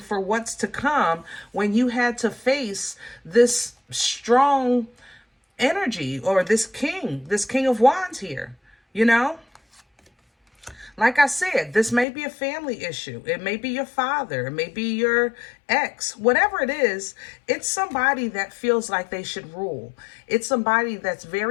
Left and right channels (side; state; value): right; drops out; at 12.1 s